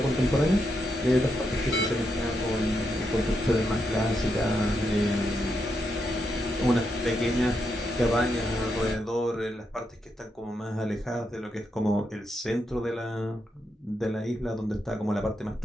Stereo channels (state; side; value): normal; both; correlation 0.82